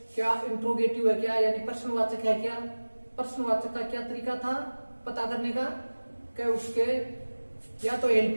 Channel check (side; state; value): both; inverted; correlation -1.00